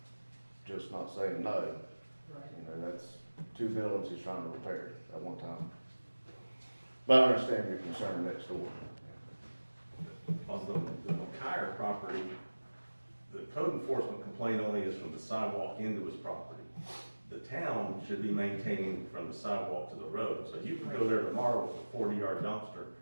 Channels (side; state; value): both; inverted; correlation -1.00